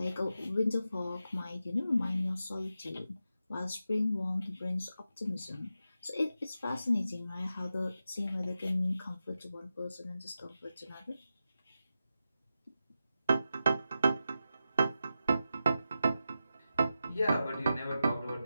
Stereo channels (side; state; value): both; inverted; correlation -0.90